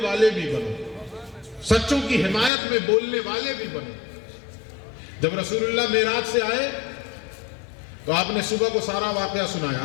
والے بھی بنو، سچوں کی حمایت میں بولنے والے بھی بنو. جب رسول اللہ معراج سے آئے تو آپ نے صبح کو سارا واقعہ سنایا،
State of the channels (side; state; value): right; drops out; at 2.5 s